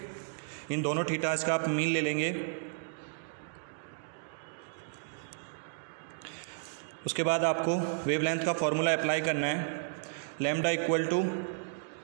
इन दोनों थीटास का आप मीन ले लेंगे। उसके बाद आपको वेवलेंथ का फॉर्मूला अप्लाई करना है, lambda equal to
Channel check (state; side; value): silent; left; digital silence